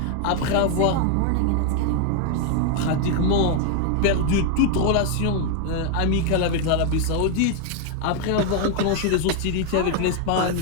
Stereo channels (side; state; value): both; different; correlation 0.01